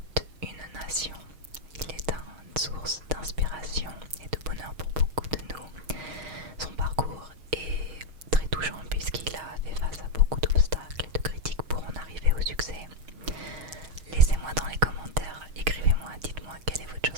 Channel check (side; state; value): left; late; 6.3 ms